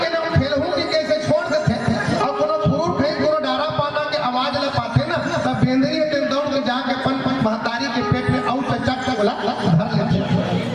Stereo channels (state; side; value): noise; right; rumble, 30 dB below the sound